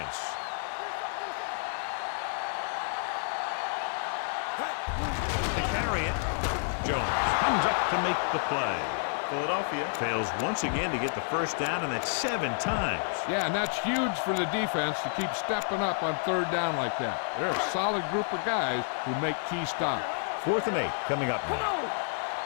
Give me some. To carry it, Jones comes up to make the play. Philadelphia fails once again to get the first down, and that's 7 times. Yeah, and that's huge for the defense to keep stepping up on third down like that. They're a solid group of guys who make key stops. Fourth and 8 coming up Come now. on.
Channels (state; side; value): silent; right; 58 dB below the other